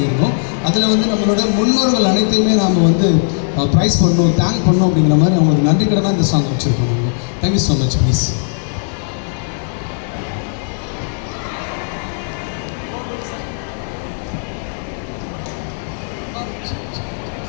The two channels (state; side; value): silent; right; 60 dB below the other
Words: அதில் வந்து நம்மளோட முன்னோர்கள் அனைத்தையுமே நாம் வந்து ப்ரைஸ் பண்ணணும், தேங்க் பண்ணணும் அப்படிங்கிற மாதிரி அவங்களுக்கு நன்றி கடனாக இந்த சாங் வச்சுருக்கோம். நாங்கள் தேங்க்யூ ஸோ மச். ப்ளீஸ்